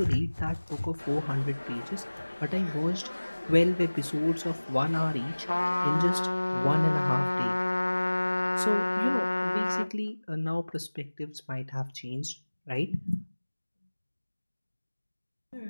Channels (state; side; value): inverted; both; correlation -1.00